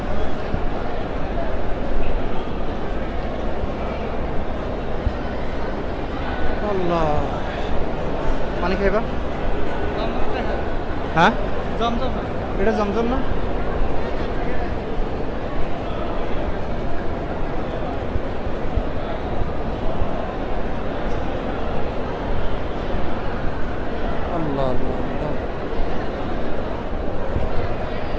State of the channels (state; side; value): identical; both; correlation 1.00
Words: আল্লাহ, পানি খাইবা? হ্যাঁ, এটা জমজম না? আল্লাহ আল্লাহ আল্লাহ।